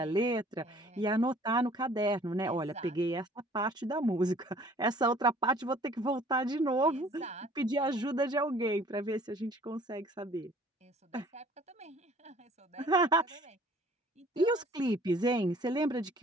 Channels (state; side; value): normal; both; correlation 0.54